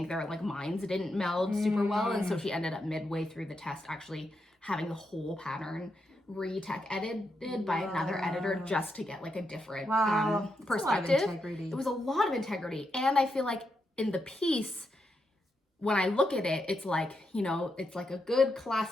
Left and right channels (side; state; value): both; normal; correlation 0.83